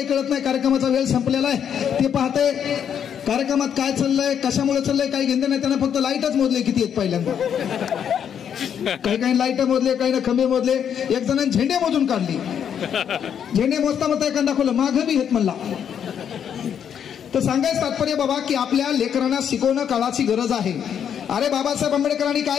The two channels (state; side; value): quieter; right; 8.4 dB